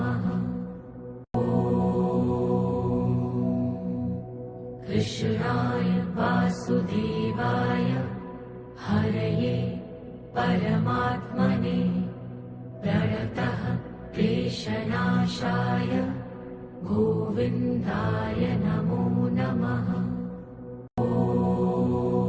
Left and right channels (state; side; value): identical; both; correlation 1.00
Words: कृष्णाय वासुदेवाय हरये परमात्मने प्रणतः क्लेशनाशाय गोविन्दाय नमो नमः।